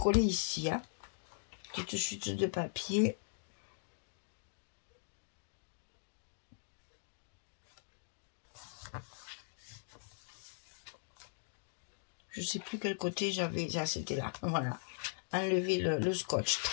ici. Hein. Petite chute de papier. Je sais plus quel côté j'avais. Ah, c'était là. Voilà. Enlever le scotch.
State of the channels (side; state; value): right; silent; digital silence